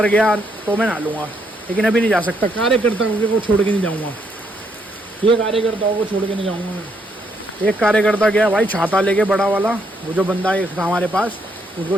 गया तो मैं नहा लूँगा, लेकिन अभी नहीं जा सकता, कार्यकर्ताओं को छोड़ के नहीं जाऊँगा, ये कार्यकर्ताओं को छोड़ के नहीं जाऊँगा मैं। एक कार्यकर्ता गया भाई छाता लेके बड़ा वाला, वो जो बंदा एक था हमारे पास, उसको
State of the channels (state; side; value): normal; both; correlation 0.74